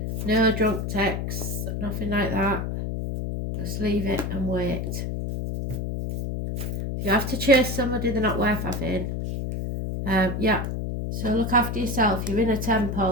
No drunk texts, nothing like that. Just leave it and wait. If you have to chase somebody, they're not worth having. Yeah, so look after yourself. You're in a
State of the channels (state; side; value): noise; left; hum, 3 dB below the sound